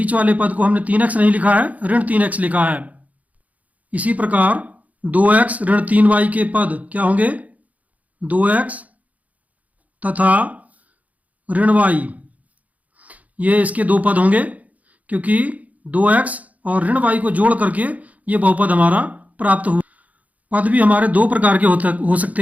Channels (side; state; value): left; late; 0.073 ms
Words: वाले पद को हमने 3x नहीं लिखा है, ऋण 3x लिखा है। इसी प्रकार 2x ऋण 3y के पद क्या होंगे? 2x तथा ऋण y, ये इसके 2 पद होंगे क्योंकि 2x और ऋण y को जोड़ करके ये बहुपद हमारा प्राप्त हुआ। पद भी हमारे दो प्रकार के हो